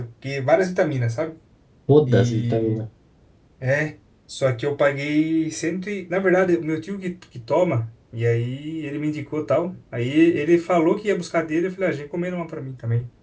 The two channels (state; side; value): identical; both; correlation 1.00